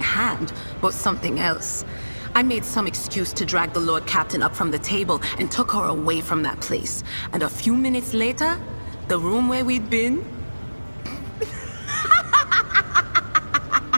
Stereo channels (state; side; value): inverted; both; correlation -1.00